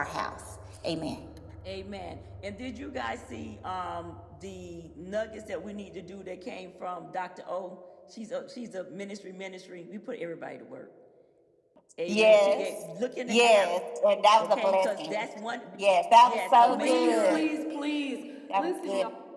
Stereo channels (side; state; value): both; identical; correlation 1.00